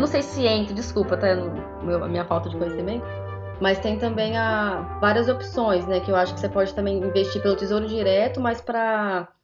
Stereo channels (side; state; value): both; identical; correlation 1.00